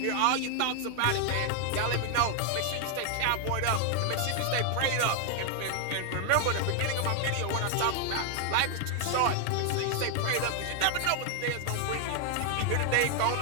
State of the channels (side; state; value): both; different; correlation 0.00